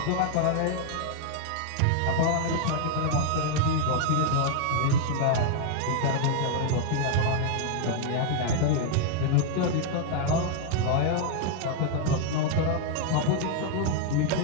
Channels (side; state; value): both; different; correlation 0.00